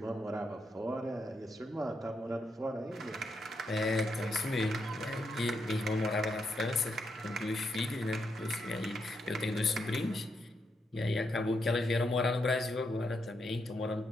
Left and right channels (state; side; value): normal; both; correlation 0.81